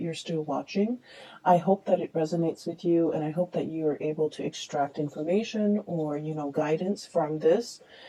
you're still watching. I hope that it resonates with you, and I hope that you are able to extract information or, guidance from this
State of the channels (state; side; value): identical; both; correlation 1.00